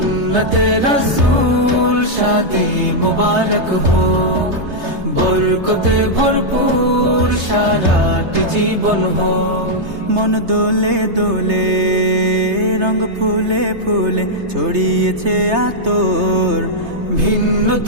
রসূল শাদি মুবারক হোক, বরকতে ভরপুর সারাটি জীবন হোক। মন দোলে দোলে রঙ ফুলে ফুলে ছড়িয়েছে আতর, ভিন্ন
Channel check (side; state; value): left; late; 3.3 ms